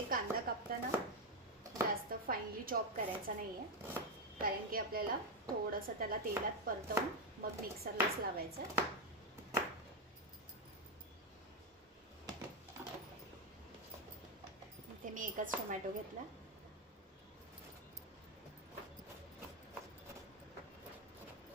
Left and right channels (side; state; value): both; normal; correlation 0.03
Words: कांदा कापताना जास्त फाईनली चॉप करायचा नाही आहे, कारण की आपल्याला थोडंसं त्याला तेलात परतवून मग मिक्सरलाच लावायचं. इथे मी एकच टोमॅटो घेतला.